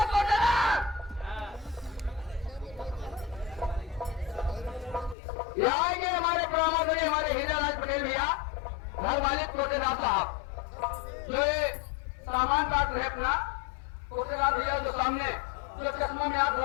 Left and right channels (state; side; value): drops out; right; at 5.2 s